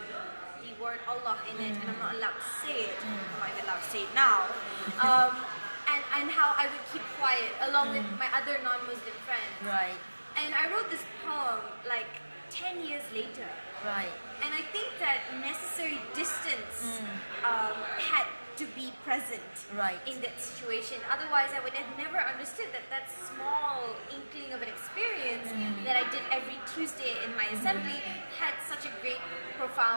word Allah in it, and I'm not allowed to say it. I'm not even allowed to say it now. And how I would keep quiet along with my other non-Muslim friends. Right. And I wrote this poem like 10 years later. Right. And I think that necessary distance had to be present in that situation. Otherwise, I would have never understood that small inkling of an experience that I did every Tuesday in my assembly had such a great,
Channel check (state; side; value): inverted; both; correlation -1.00